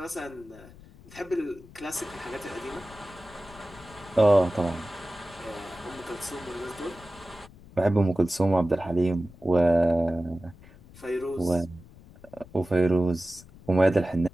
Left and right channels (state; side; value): noise; left; rumble, 21 dB below the sound